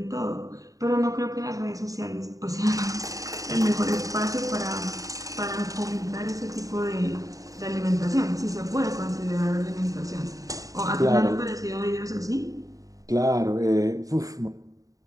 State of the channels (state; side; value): late; left; 0.17 ms